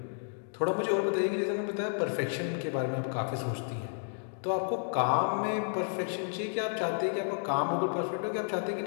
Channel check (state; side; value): silent; right; digital silence